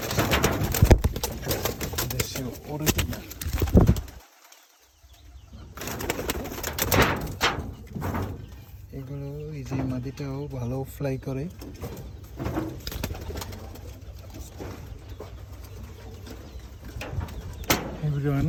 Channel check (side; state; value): both; identical; correlation 1.00